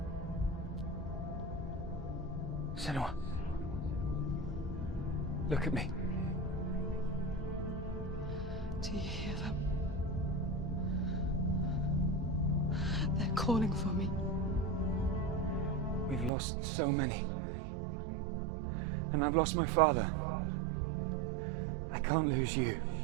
Senua. Look at me. Do you hear them? They're calling for me. We've lost so many. And I've lost my father. I can't lose you.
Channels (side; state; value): left; drops out; at 16.3 s